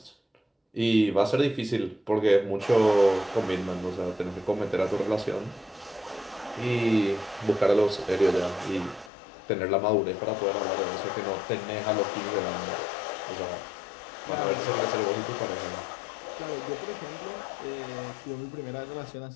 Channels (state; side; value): drops out; right; at 9.1 s